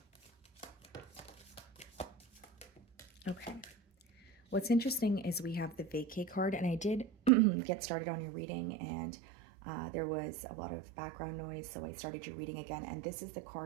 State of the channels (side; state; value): left; drops out; at 7.3 s